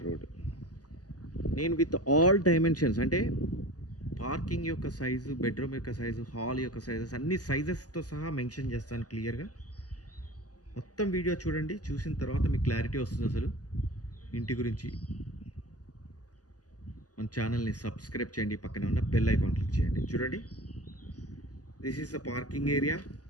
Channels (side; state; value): right; late; 0.67 ms